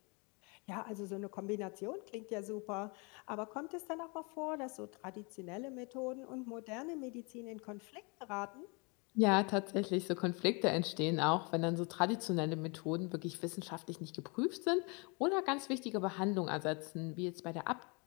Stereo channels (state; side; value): quieter; right; 31.3 dB